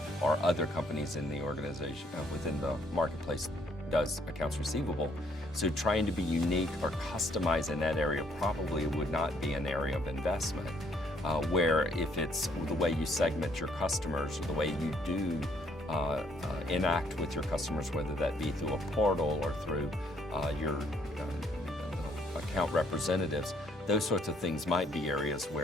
or other companies in the organization, within the marketplace, does accounts receivable. So trying to be unique or customize in that area probably would not be an area of investment. Where if it's the way you segment your customers, or the way you do enact with your customers, whether that be through a portal or through your account representatives, those sorts of things might be areas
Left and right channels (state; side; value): normal; both; correlation 0.66